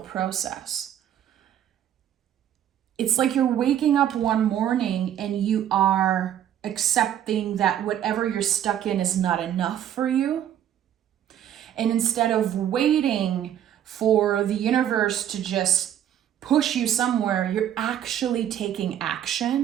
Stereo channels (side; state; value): left; quieter; 10.5 dB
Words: It's like you're waking up one morning and you are accepting that whatever you're stuck in is not enough for you. And instead of waiting for the universe to just push you somewhere, you're actually taking